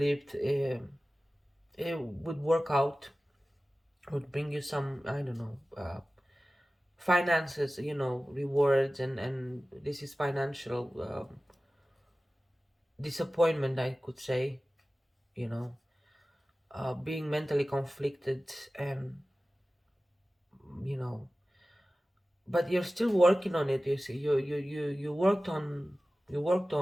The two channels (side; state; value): both; normal; correlation 0.96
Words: it would work out, would bring you some, I don't know, finances, rewards, and this is financial disappointment, I could say, you know, being mentally conflicted, and you know, but you're still working on it. You see, you worked